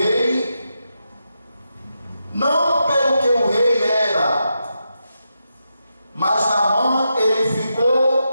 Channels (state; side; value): inverted; both; correlation -0.86